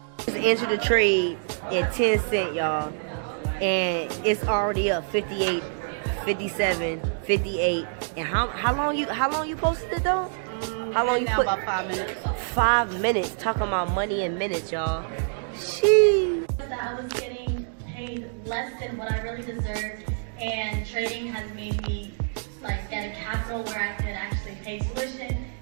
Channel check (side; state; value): left; silent; digital silence